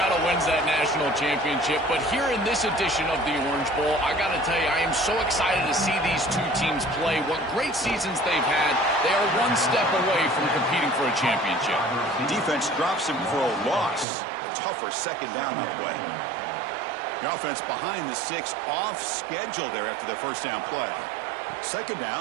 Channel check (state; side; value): drops out; left; at 14.1 s